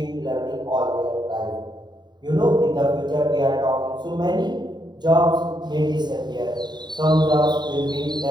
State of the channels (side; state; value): left; late; 0.21 ms